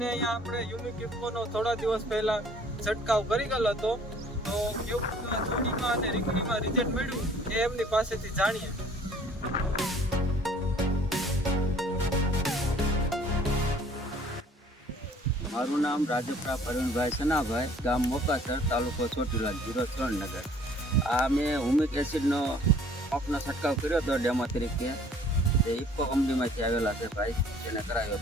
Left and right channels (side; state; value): both; normal; correlation 0.55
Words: અહીંયા આપણે યુનિક ઇફકોનો થોડા દિવસ પહેલા છંટકાવ કરી ગયેલો હતો. તો કેવું છોડીમાં અને રીંગણીમાં રિઝલ્ટ મળ્યું એ એમની પાસેથી જાણીએ. મારું નામ રાજપરા પ્રવીણભાઈ સનાભાઈ, ગામ મોકાસર, તાલુકો ચોટીલા, જિલ્લો સુરેન્દ્રનગર. આ મેં હુમિક એસિડનો પંપનો છંટકાવ કર્યો હતો ડેમો તરીકે. જે ઇફકો કંપનીમાંથી આવેલા છે ભાઈ, તેને કરાવ્યો